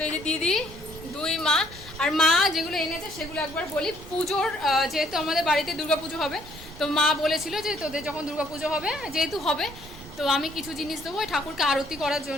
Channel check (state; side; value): noise; right; rumble, 16 dB below the sound